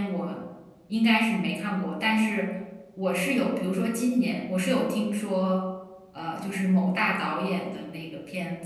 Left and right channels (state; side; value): identical; both; correlation 1.00